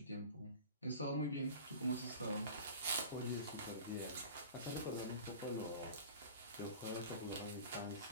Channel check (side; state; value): both; inverted; correlation -0.37